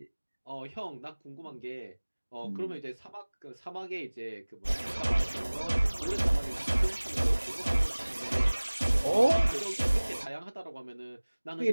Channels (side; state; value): both; inverted; correlation -1.00